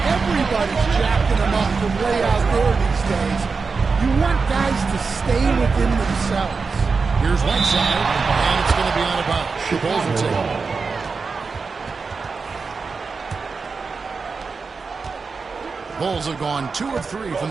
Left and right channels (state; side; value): quieter; left; 4.7 dB